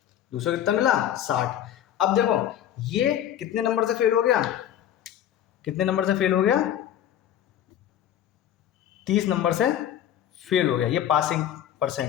दूसरे को कितना मिला, 60। अब देखो ये कितने नंबर से फेल हो गया, कितने नंबर से फेल हो गया, 30 नंबर से फेल हो गया। ये पासिंग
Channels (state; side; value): quieter; right; 10.7 dB